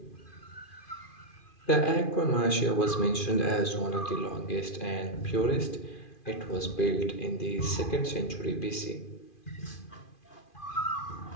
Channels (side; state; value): right; late; 2.4 ms